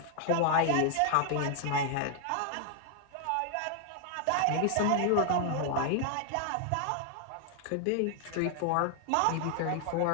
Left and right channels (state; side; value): different; both; correlation 0.00